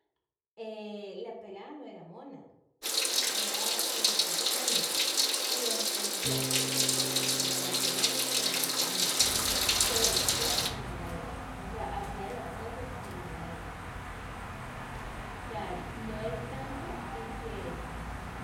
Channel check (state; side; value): identical; both; correlation 1.00